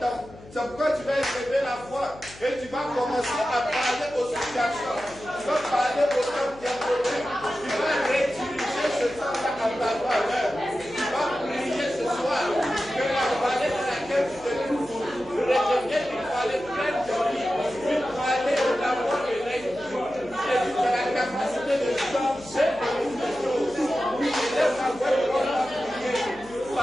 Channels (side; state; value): left; noise; hum, 20 dB below the sound